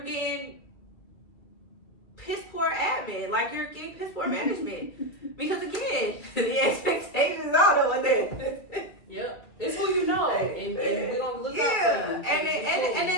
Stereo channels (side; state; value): right; late; 2.3 ms